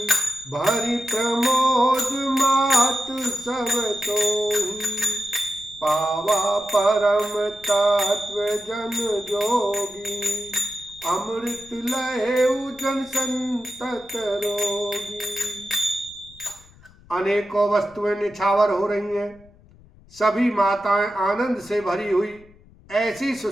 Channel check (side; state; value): left; noise; rumble, 26 dB below the sound